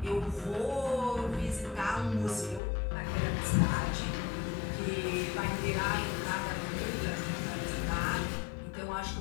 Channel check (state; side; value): drops out; right; at 2.6 s